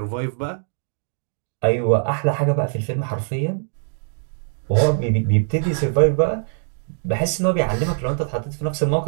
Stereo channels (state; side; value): silent; left; digital silence